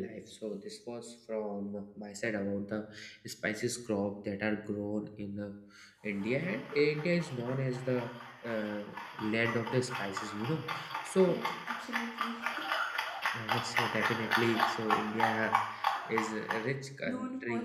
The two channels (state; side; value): identical; both; correlation 1.00